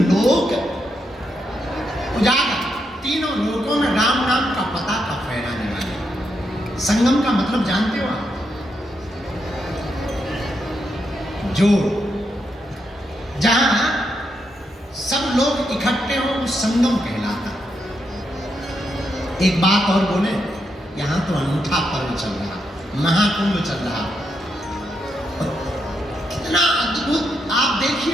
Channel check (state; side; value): normal; both; correlation 0.81